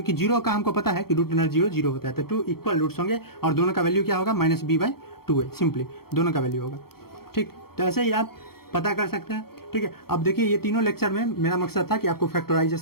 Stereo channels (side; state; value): right; late; 0.94 ms